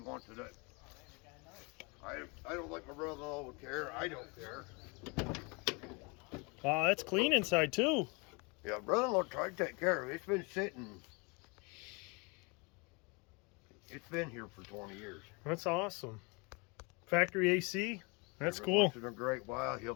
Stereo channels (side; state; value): right; quieter; 29.3 dB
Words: it. I don't think my brother-in-law would care. I don't care. Wow, that's clean inside too. Yeah, brother-in-law tried to take care of it. It's been sitting. It's been here for 20 years. That's awesome. Factory AC. That's Every cool. once in a great while, he'll